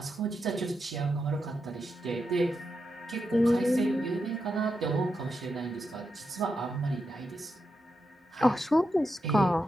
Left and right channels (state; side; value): normal; both; correlation 0.86